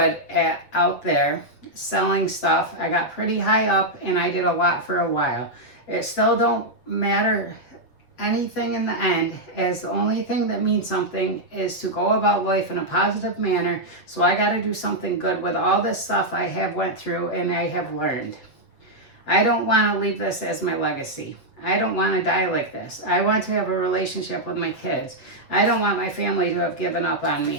out there selling stuff. I got pretty high up and I did a lot for a while. It still don't matter anything in the end, as the only thing that means something is to go about life in a positive manner. So I got to do something good with all this stuff I have went through and I have learned. I don't want to leave this as my legacy. I don't want to die like this. I want to have a relationship with my kids. I don't want my family to have given up on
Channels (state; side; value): late; right; 7.9 ms